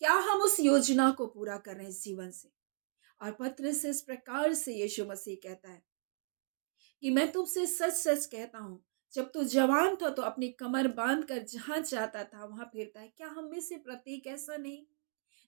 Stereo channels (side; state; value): left; silent; digital silence